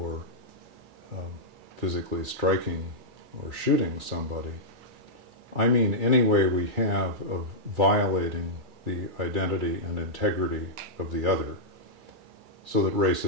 physically striking or shooting somebody. I mean any way we have of violating the identity and integrity of the other, so that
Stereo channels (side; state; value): left; late; 2.3 ms